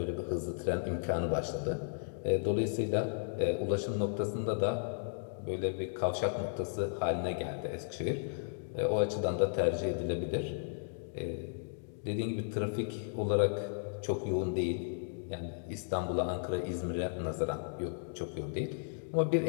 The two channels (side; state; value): right; silent; digital silence